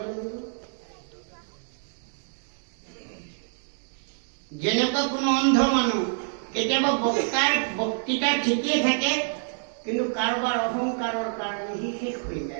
লাগিব। যেনেকুৱা কোনো অন্ধ মানুহ, কেতিয়াবা বক্তাৰ বক্তৃতা ঠিকেই থাকে, কিন্তু কাৰোবাৰ অহংকাৰৰ কাৰণে সি শেষ হৈ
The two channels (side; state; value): left; silent; digital silence